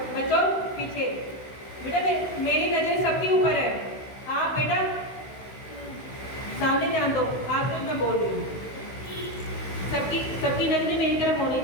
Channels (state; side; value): late; right; 16 ms